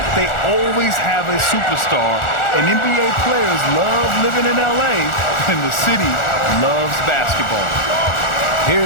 they always have a superstar. And NBA players love living in LA, and the city loves basketball.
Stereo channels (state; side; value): late; right; 1.4 ms